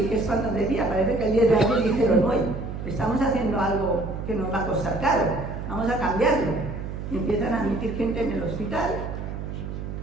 que es cuando decía, parece que el 10 de abril dijeron, hoy estamos haciendo algo que nos va a costar caro, vamos a cambiarlo. Y empiezan a admitir gente en el hospital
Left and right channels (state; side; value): noise; right; hum, 7 dB below the sound